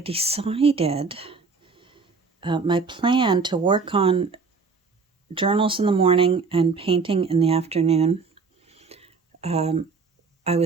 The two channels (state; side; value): quieter; left; 4.6 dB